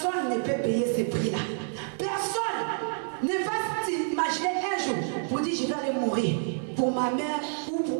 ne peut payer ce prix-là. Personne ne va s'imaginer un jour pour dire je vais aller mourir pour ma mère ou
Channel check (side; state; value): left; silent; digital silence